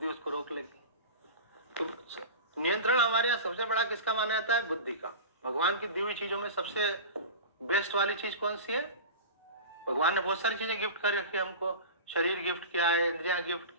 उसको रोक लेगी। तो नियंत्रण हमारे यहाँ सबसे बड़ा किसका माना जाता है? बुद्धि का। भगवान की दी हुई चीजों में सबसे बेस्ट वाली चीज कौन सी है? भगवान ने बहुत सारी चीजें गिफ्ट कर रखी है हमको। शरीर गिफ्ट किया है, इंद्रियां गिफ्ट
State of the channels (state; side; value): inverted; both; correlation -0.31